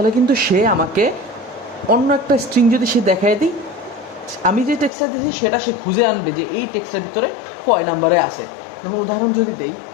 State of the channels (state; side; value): drops out; right; at 4.9 s